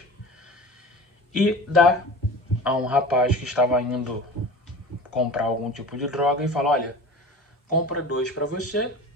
e dá a um rapaz que estava indo comprar algum tipo de droga e fala: olha, compra 2 para você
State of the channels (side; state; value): both; normal; correlation 0.36